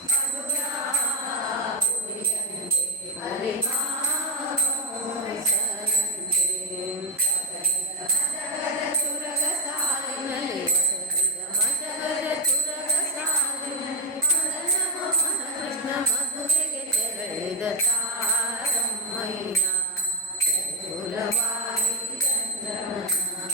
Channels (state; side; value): normal; both; correlation 0.06